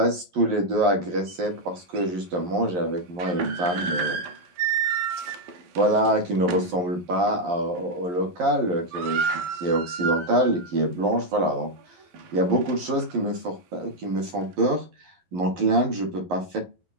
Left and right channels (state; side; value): late; left; 11 ms